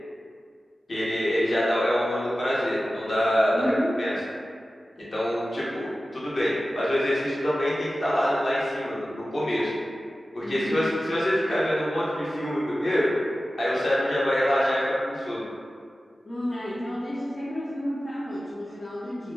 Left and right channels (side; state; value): both; normal; correlation 0.95